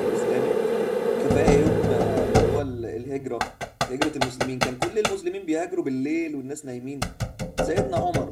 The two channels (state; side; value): identical; both; correlation 1.00